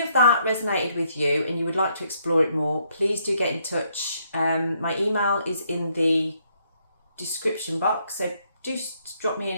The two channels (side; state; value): both; inverted; correlation -0.72